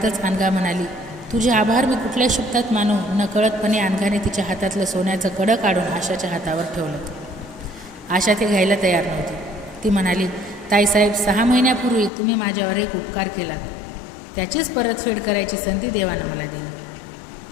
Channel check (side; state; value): right; drops out; at 12.1 s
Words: अनघा म्हणाली, तुझे आभार मी कुठल्या शब्दात मानू? नकळतपणे अनघाने तिच्या हातातलं सोन्याचं कडं काढून आशाच्या हातावर ठेवलं. आशा ते घ्यायला तयार नव्हती. ती म्हणाली, ताईसाहेब, 6 महिन्यापूर्वी तुम्ही माझ्यावर एक उपकार केलात. त्याचीच परतफेड करायची संधी देवानं मला दिली.